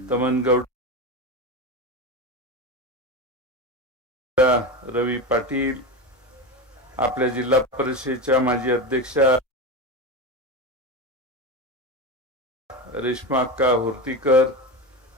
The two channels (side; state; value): both; normal; correlation 0.21